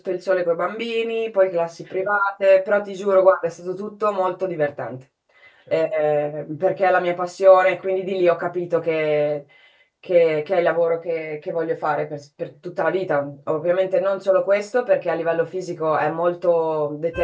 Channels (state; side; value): identical; both; correlation 1.00